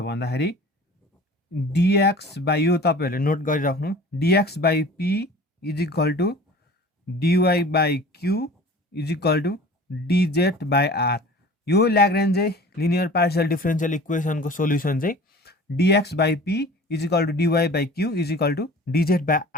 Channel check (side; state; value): both; normal; correlation 0.43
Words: dx बाई, यो तपाईहरुले नोट गरिराख्नु, dx by p is equal to dy by q is equal to dz by r। यो लाग्रेन्ज लिनियर पार्शियल डिफरेन्शियल इक्वेसनको सोल्युसन चाहिँ dx by p is equal to dy by q is equal to dz by